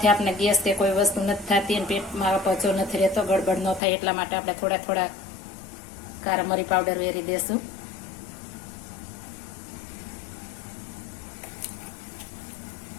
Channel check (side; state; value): right; drops out; at 3.8 s